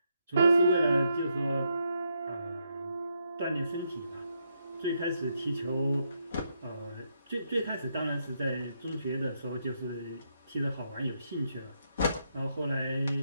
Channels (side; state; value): both; inverted; correlation -0.78